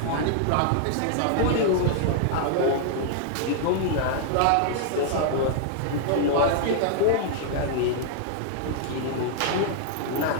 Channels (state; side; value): different; both; correlation -0.01